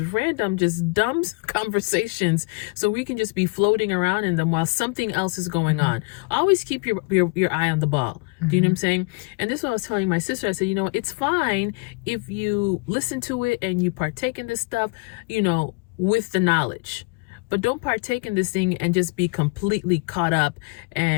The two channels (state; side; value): quieter; right; 29.2 dB